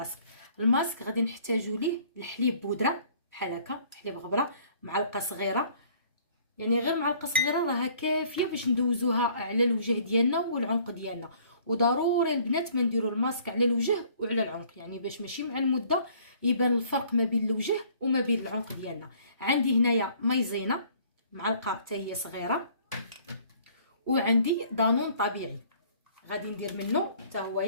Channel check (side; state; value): both; inverted; correlation -0.57